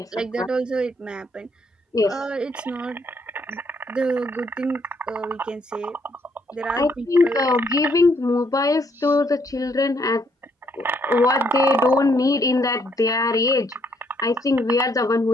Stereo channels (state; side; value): normal; both; correlation 0.70